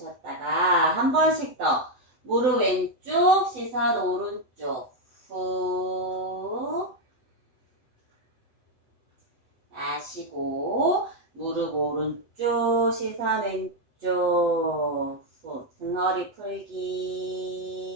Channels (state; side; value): late; left; 8.0 ms